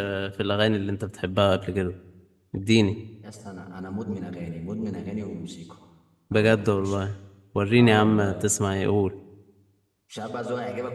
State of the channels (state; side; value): identical; both; correlation 1.00